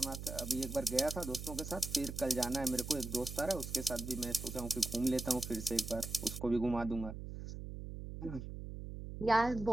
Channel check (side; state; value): right; noise; hum, 8 dB below the sound